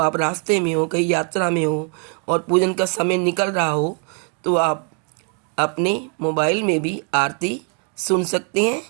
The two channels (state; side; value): quieter; left; 38.9 dB